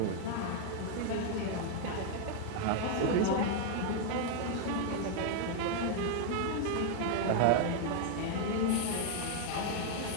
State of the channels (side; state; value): both; different; correlation 0.00